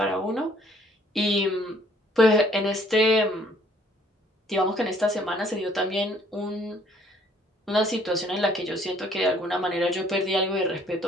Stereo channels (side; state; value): both; normal; correlation 0.61